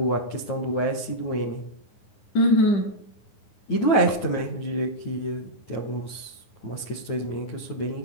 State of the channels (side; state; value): right; late; 9.3 ms